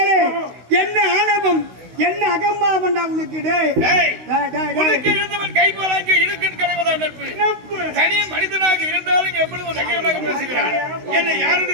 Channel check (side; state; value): left; late; 16 ms